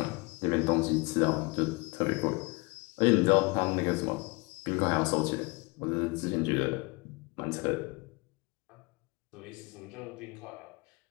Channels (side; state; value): right; quieter; 27.1 dB